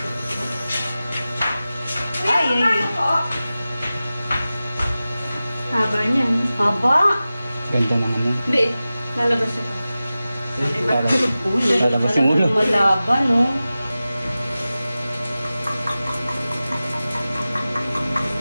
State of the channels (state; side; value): inverted; both; correlation -0.96